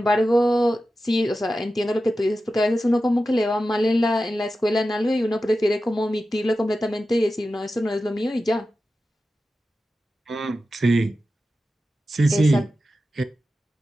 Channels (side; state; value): both; normal; correlation 0.92